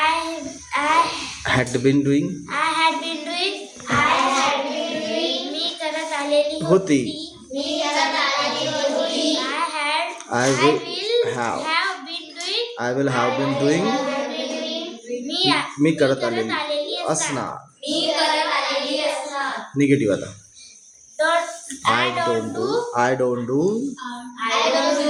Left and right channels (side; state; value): both; identical; correlation 1.00